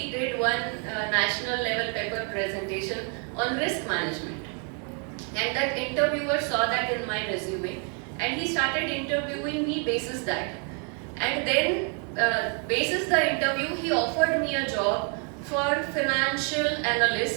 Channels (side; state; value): left; quieter; 40.0 dB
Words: did one national level paper presentation on risk management. And that interviewer saw that in my resume, and he started interviewing me basis that. And then, basis the interview, he offered me a job for financial